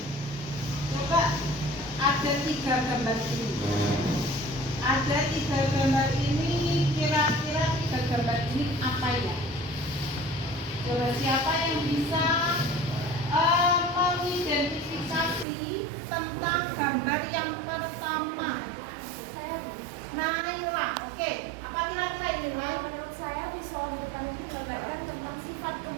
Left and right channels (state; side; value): drops out; left; at 15.5 s